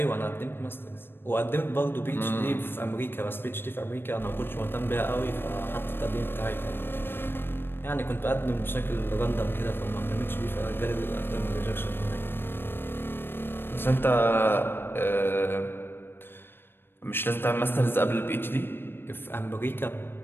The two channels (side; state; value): right; late; 0.10 ms